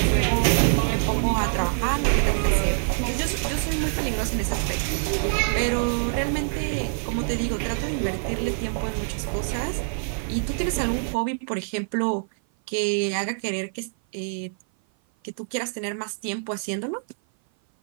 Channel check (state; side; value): silent; left; 56 dB below the other